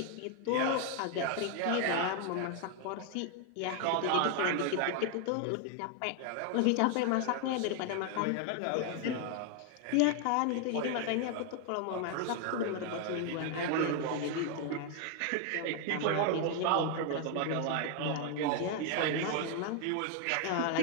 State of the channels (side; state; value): both; different; correlation 0.00